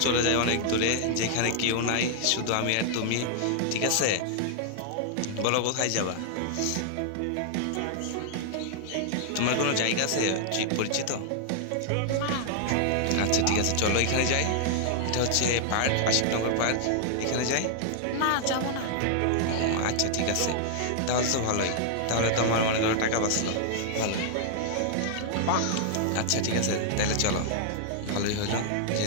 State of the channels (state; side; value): different; both; correlation -0.01